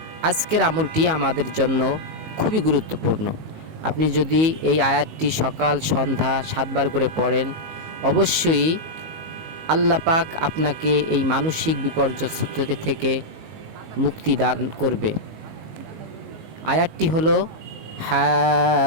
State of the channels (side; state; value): left; late; 19 ms